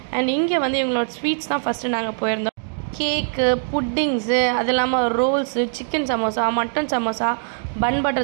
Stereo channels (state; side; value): silent; left; digital silence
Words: அண்ட் இங்கே வந்து இவங்களோட ஸ்வீட்ஸ் தான் ஃபஸ்ட்டு நாங்கள் போயிருந்தோம். கேக்கு, புட்டிங்ஸு, அது இல்லாமல் rolls, chicken samosa, mutton samosa, bun